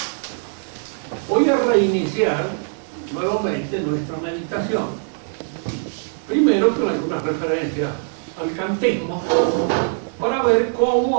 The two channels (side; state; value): left; silent; 62 dB below the other